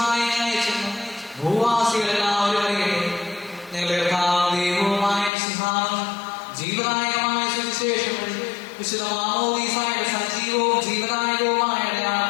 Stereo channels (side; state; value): right; drops out; at 5.3 s